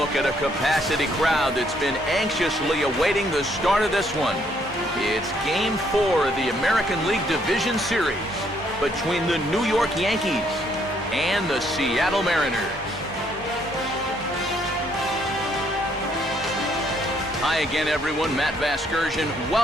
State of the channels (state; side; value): normal; both; correlation 0.69